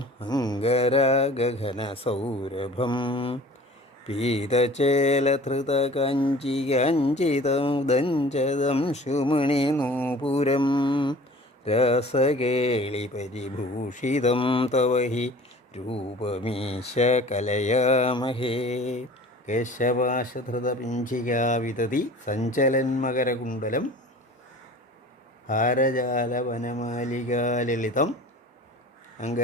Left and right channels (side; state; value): both; normal; correlation 0.44